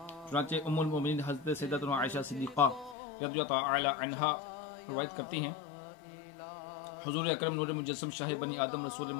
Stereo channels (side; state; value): right; drops out; at 3.0 s